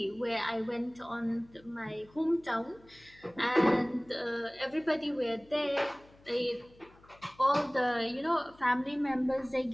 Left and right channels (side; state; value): left; noise; hum, 27 dB below the sound